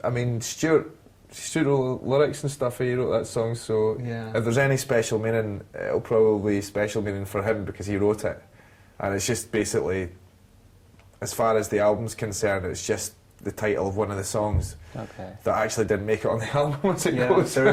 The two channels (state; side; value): identical; both; correlation 1.00